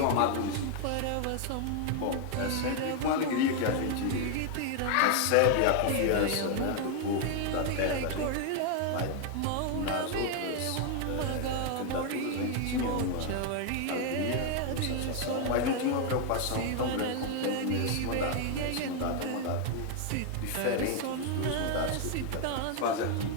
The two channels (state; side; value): different; both; correlation 0.00